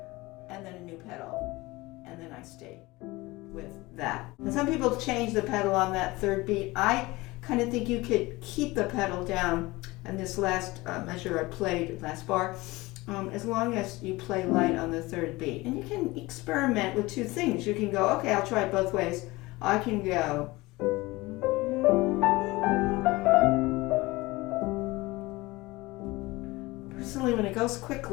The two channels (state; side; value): quieter; right; 21.2 dB